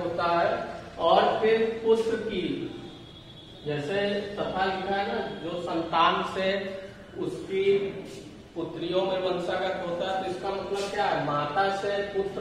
होता है। और फिर पुत्र की, जैसे तथा लिखा है ना, जो संतान से उसकी पुत्रियों में वंशागत होता है। तो इसका मतलब क्या है? माता से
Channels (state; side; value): identical; both; correlation 1.00